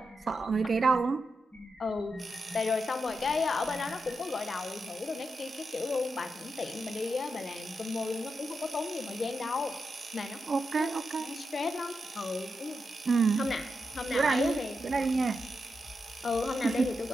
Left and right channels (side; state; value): both; normal; correlation 0.87